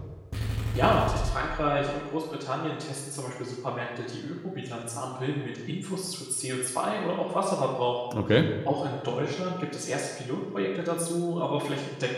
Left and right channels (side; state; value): both; identical; correlation 1.00